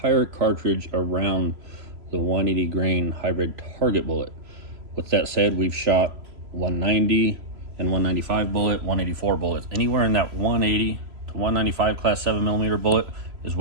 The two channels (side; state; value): left; late; 3.0 ms